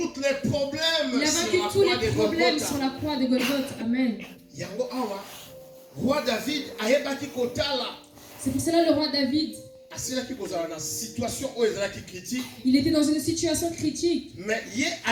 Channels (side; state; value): both; identical; correlation 1.00